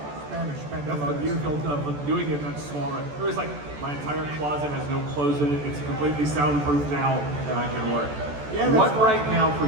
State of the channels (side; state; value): left; late; 14 ms